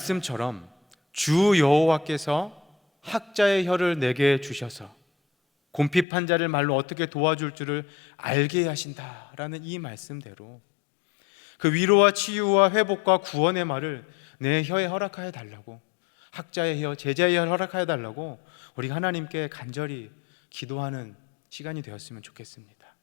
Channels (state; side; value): drops out; right; at 6.1 s